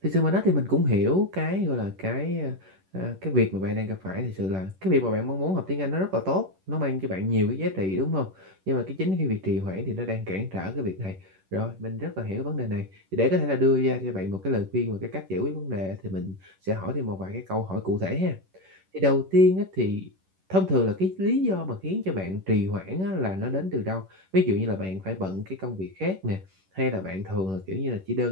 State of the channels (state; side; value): late; left; 11 ms